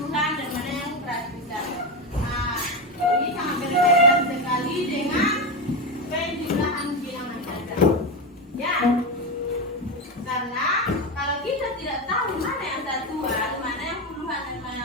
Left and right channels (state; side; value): normal; both; correlation 0.14